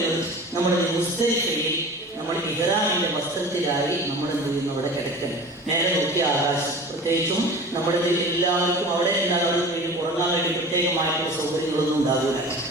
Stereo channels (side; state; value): both; normal; correlation 0.38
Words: നമ്മുടെ മുസ്ദലിഫയിൽ നമ്മൾ ഇഹ്റാമിന്റെ വസ്ത്രത്തിലായി നമ്മൾ എന്ത് ചെയ്യുന്നു? അവിടെ കിടക്കണം. നേരെ നോക്കിയ ആകാശം. പ്രത്യേകിച്ചും നമ്മുടെ എല്ലാവർക്കും അവിടെ എന്താണ് ഉറങ്ങാൻ വേണ്ടി പ്രത്യേകമായിട്ടുള്ള സൗകര്യങ്ങളൊന്നും ഉണ്ടാകില്ല.